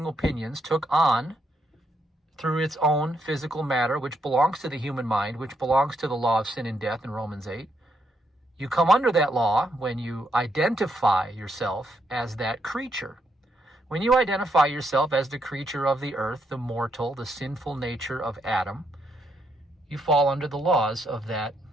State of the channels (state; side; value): normal; both; correlation 0.77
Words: opinions, took on, through its own physical matter, which belongs to the human mind, which belongs to the law of sin and death in Romans 8. You come under that law when you identify yourself as that creature. When you identify yourself as the creature of the earth, the mortal, the sinful nature of Adam, you fall under the laws of that